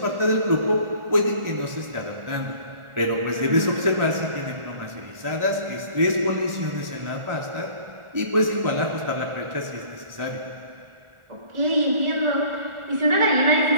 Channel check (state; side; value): late; left; 1.4 ms